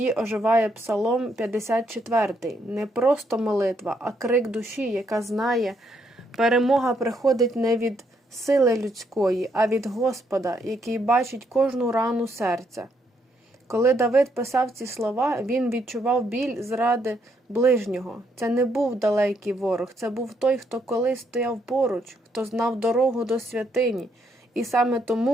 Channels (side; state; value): both; normal; correlation 0.74